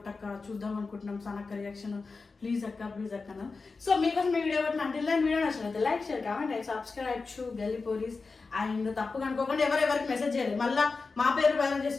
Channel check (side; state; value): right; quieter; 4.2 dB